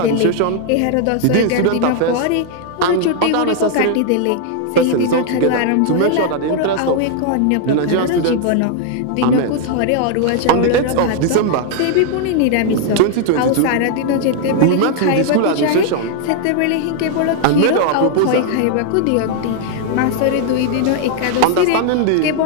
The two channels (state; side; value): different; both; correlation 0.00